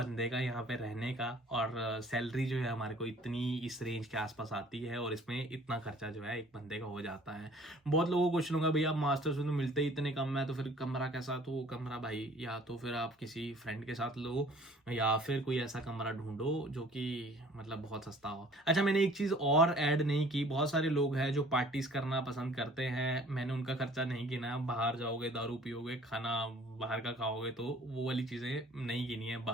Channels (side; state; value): both; normal; correlation 0.53